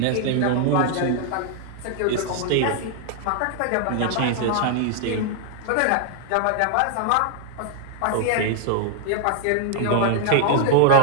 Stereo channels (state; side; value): different; both; correlation 0.00